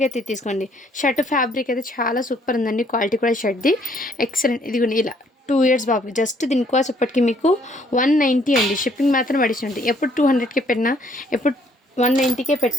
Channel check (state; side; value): normal; both; correlation 0.64